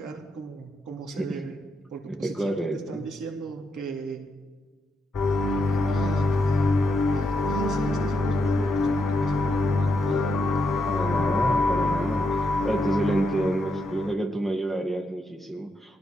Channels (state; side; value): normal; both; correlation 0.82